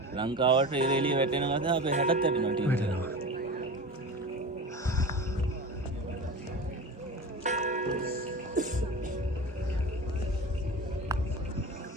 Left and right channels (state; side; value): normal; both; correlation 0.30